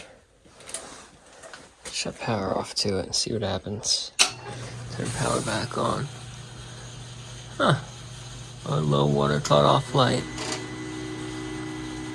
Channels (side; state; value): both; identical; correlation 1.00